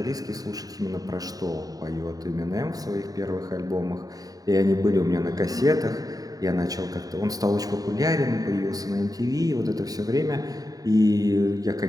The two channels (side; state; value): left; late; 0.18 ms